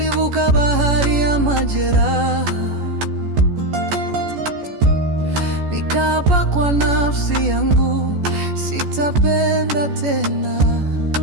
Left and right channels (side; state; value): left; late; 14 ms